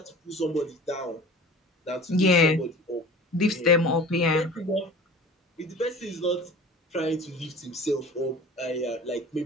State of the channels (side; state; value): both; normal; correlation 0.40